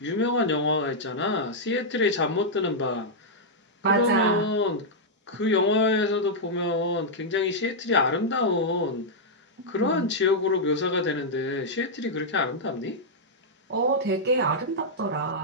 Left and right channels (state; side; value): normal; both; correlation -0.06